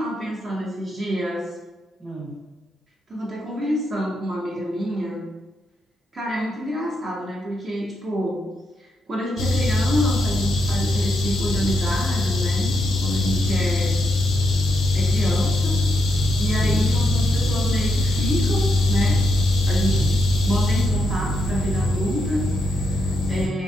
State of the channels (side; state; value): both; normal; correlation 0.81